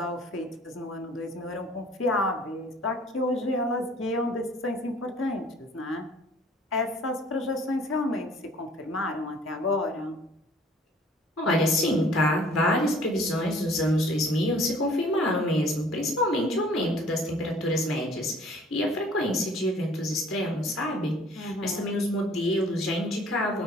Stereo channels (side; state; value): both; normal; correlation 0.54